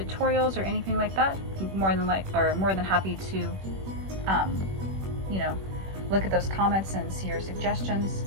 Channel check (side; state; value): left; late; 21 ms